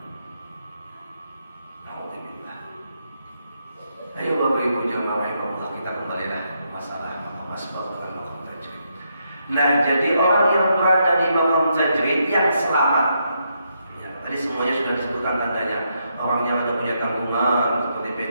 Alhamdulillah. Ayo Bapak Ibu jamaah rahimahullah, kita kembalilah masalah maqam asbab dan maqam tajrid. Nah, jadi orang yang berada di maqam tajrid yang selamat. Ya, tadi semuanya sudah disebutkan tandanya. Orang yang ada punya tanggungan, seperti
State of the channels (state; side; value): inverted; both; correlation -0.79